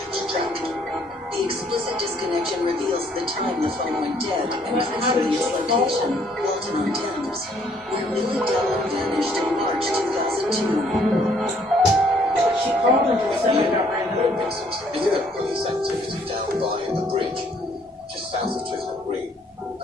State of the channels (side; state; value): both; normal; correlation 0.65